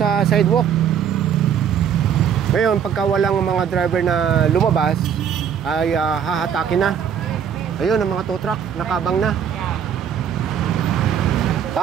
sidewalk. Ngayon, pagka walang mga driver na lumabas, ay hahatakin na. Ayun, ang mga tow truck, nakabang na.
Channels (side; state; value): left; quieter; 8.3 dB